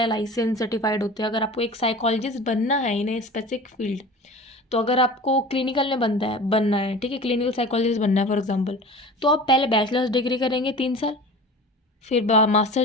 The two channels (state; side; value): normal; both; correlation 0.37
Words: लाइसेंस सर्टिफाइड होते हैं, अगर आपको एक साइकोलॉजिस्ट बनना है इन ए स्पेसिफिक फील्ड, तो अगर आपको क्लिनिकल में बनना है, ठीक है, क्लिनिकल साइकोलॉजिस्ट बनना है फॉर एग्जांपल, तो आप पहले बैचलर्स डिग्री करेंगे 3 साल, फिर